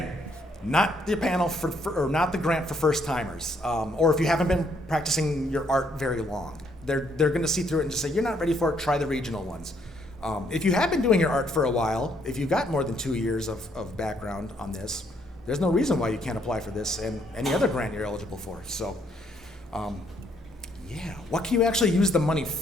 not the panel or not the grant for first timers, or if you haven't been practicing your art very long. They're going to see through it and just say, you're not ready for it, try the regional ones. If you have been doing your art for a while, if you've got more than 2 years of background on this, there's no reason why you can't apply for this and any other grant you're eligible for. So, yeah, what can you actually use the money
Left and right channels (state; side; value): normal; both; correlation 0.70